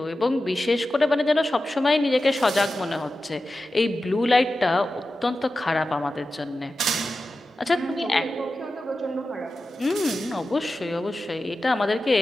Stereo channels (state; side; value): normal; both; correlation 0.93